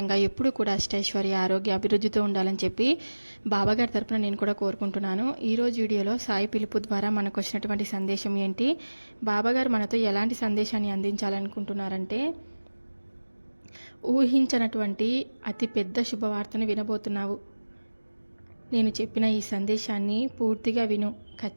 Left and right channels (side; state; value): both; inverted; correlation -1.00